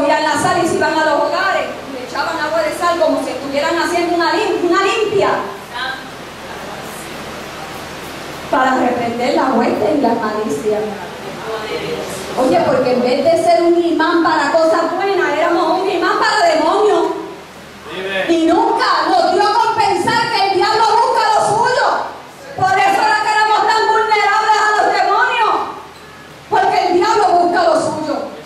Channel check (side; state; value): both; identical; correlation 1.00